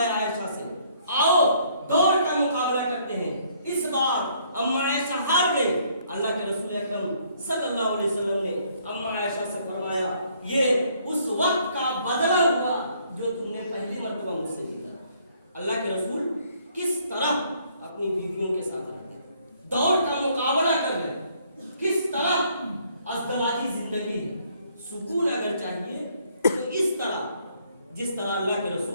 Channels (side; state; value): both; inverted; correlation -0.65